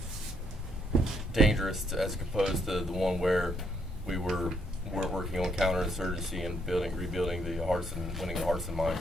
dangerous as opposed to the one where we were working on counterinsurgency and rebuilding the hearts and winning the hearts and minds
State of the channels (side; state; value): both; normal; correlation 0.73